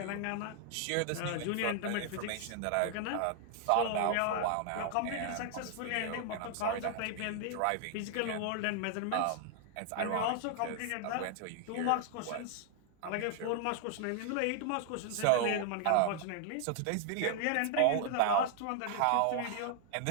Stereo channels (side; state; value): both; different; correlation 0.00